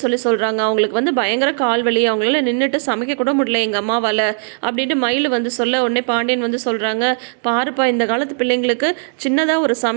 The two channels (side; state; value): left; silent; digital silence